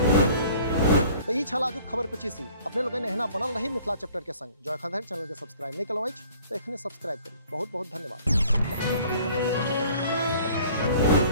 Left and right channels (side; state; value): both; inverted; correlation -0.53